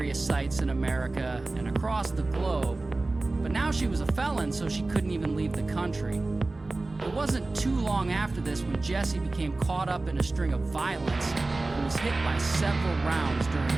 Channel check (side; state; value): left; quieter; 3.2 dB